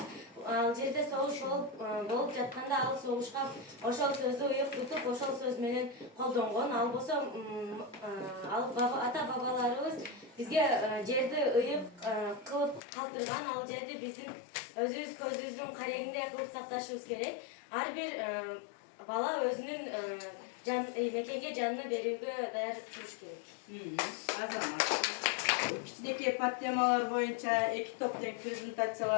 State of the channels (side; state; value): right; drops out; at 12.8 s